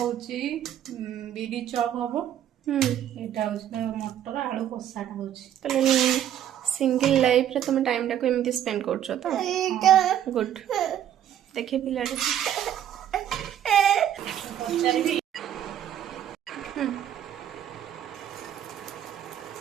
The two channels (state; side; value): quieter; left; 10.6 dB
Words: বিডি চপ হবো এটা হচ্ছে মটর আলু কষাটা হচ্ছে তাহলে সিঙ্গল লাইফ রে তুমি টাইমটা को एमती स्पेंड करछो तो गुड देखे पिलाटे